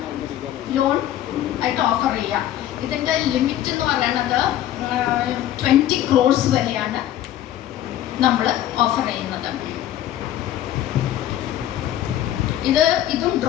ലോൺ ആയിട്ട് ഓഫർ ചെയ്യുക. ഇതിൻ്റെ ലിമിറ്റ് എന്ന് പറയുന്നത് 20 crores വരെയാണ് നമ്മൾ ഓഫർ ചെയ്യുന്നത്. ഇതും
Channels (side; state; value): right; quieter; 12.4 dB